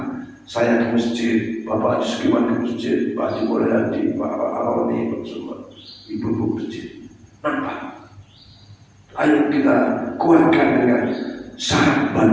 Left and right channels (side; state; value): both; identical; correlation 1.00